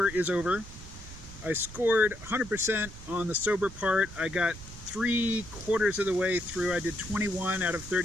is over. I scored 100% on the sober part. I got 3/4 of the way through. I did 21 out of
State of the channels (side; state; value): right; noise; rumble, 15 dB below the sound